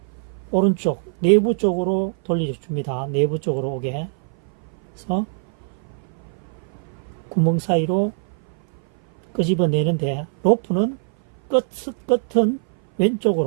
오른쪽 내부 쪽으로 돌려줍니다. 내부 쪽으로 오게 해서 구멍 사이로 끄집어내는데, 로프는 끝은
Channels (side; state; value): left; silent; 58 dB below the other